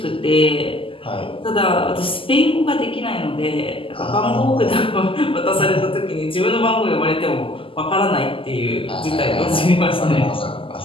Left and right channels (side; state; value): right; late; 0.26 ms